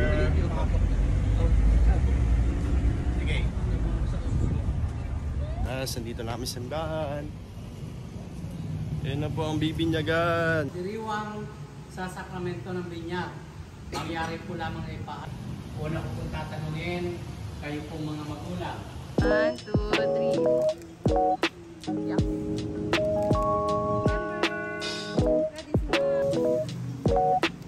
Sige. Nandito na kami sa simbahan. Yan na po ang bibinyagan. Diriwang sa sakramento ng binyag. Mangyari po lamang ay paat. Una ko pong tatanungin, kayo pong mga magulang. 1, 2, 3. Yeah.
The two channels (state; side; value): identical; both; correlation 1.00